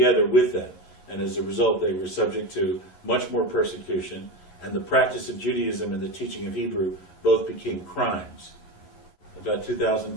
with them. And as a result, they were subject to much more persecution, and the practice of Judaism and the teaching of Hebrew both became crimes. About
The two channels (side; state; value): right; late; 11 ms